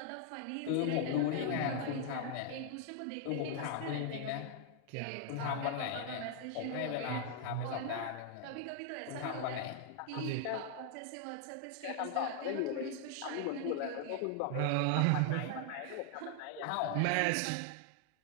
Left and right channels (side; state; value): both; different; correlation 0.00